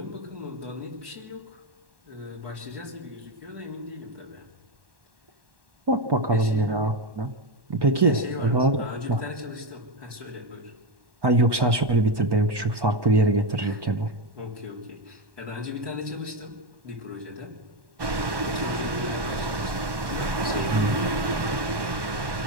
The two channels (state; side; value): late; left; 1.1 ms